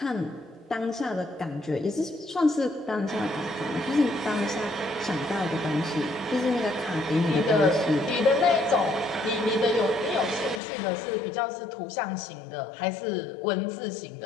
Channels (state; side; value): drops out; right; at 10.6 s